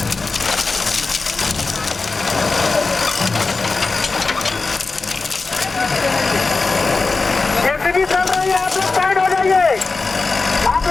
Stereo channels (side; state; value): right; quieter; 3.9 dB